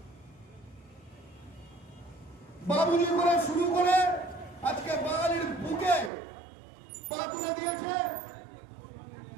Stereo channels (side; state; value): left; drops out; at 6.1 s